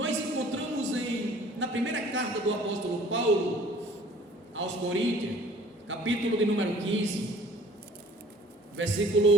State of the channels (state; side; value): normal; both; correlation 0.52